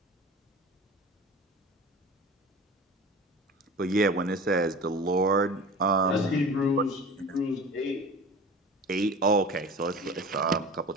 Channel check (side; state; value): both; normal; correlation 0.37